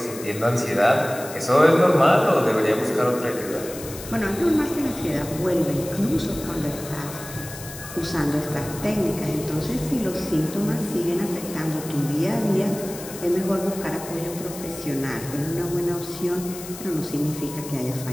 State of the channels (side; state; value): left; noise; hiss, 13 dB below the sound